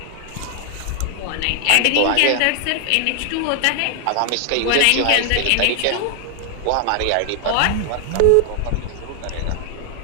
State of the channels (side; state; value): both; different; correlation 0.00